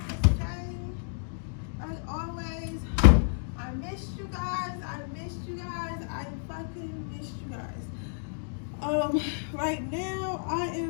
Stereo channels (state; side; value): silent; right; digital silence